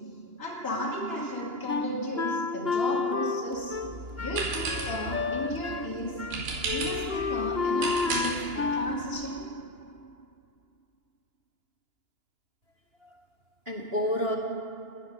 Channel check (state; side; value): late; left; 2.9 ms